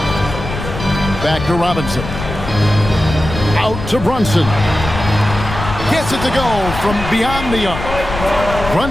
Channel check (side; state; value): left; noise; rumble, 8 dB below the sound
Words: Back to Robinson. Out to Brunson. Gets it to go from beyond the arc.